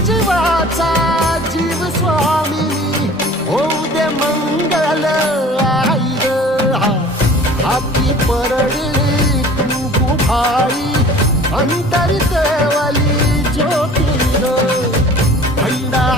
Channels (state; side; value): normal; both; correlation 0.46